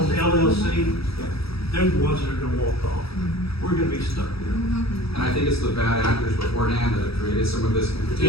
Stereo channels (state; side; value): late; right; 0.77 ms